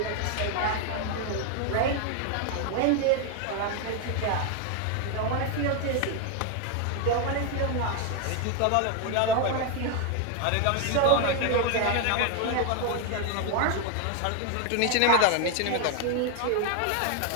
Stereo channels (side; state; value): both; different; correlation 0.01